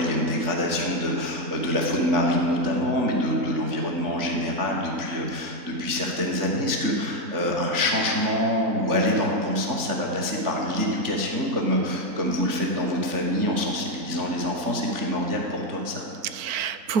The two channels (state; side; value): late; left; 3.5 ms